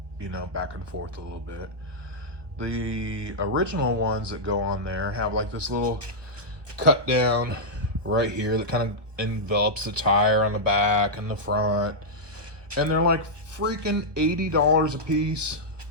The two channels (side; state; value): left; late; 1.1 ms